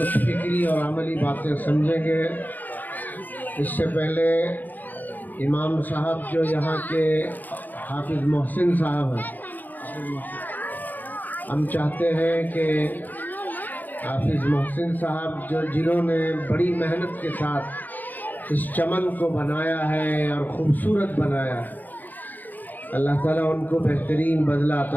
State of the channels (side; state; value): right; late; 0.085 ms